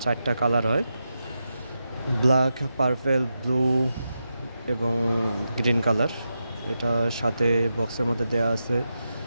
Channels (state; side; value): inverted; both; correlation -0.88